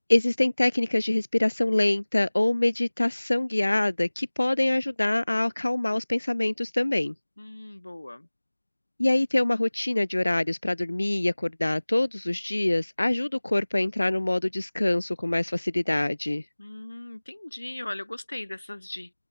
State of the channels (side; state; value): both; inverted; correlation -1.00